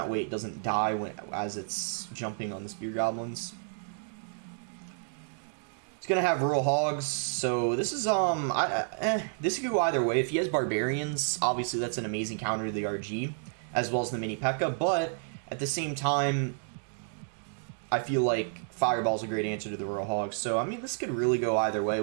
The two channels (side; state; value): left; silent; digital silence